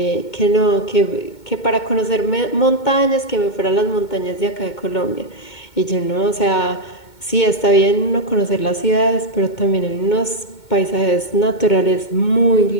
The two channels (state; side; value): late; right; 2.2 ms